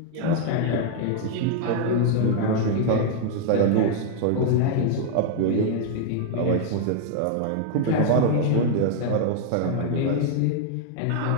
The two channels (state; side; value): different; both; correlation 0.00